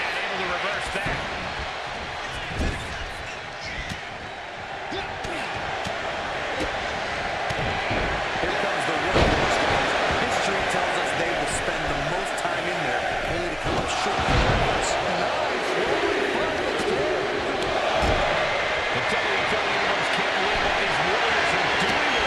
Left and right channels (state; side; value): identical; both; correlation 1.00